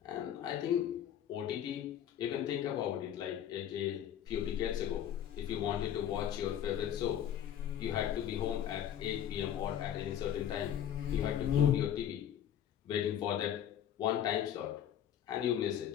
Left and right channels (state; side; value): quieter; right; 10.2 dB